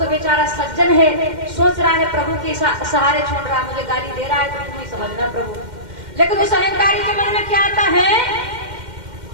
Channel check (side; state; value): left; late; 2.1 ms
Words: बेचारा सज्जन है, सोच रहा है प्रभु के सहारे छोड़ रहा, मुझे गाली दे रहा है तो तुम ही समझना प्रभु। लेकिन उस अहंकारी के मन में क्या आता है,